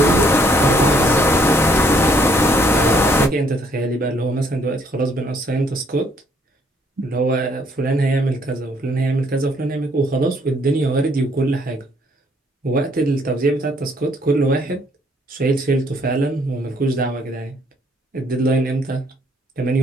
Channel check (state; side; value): normal; both; correlation 0.66